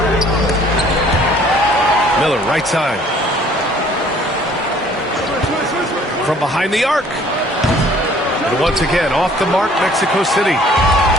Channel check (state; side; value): normal; both; correlation 0.57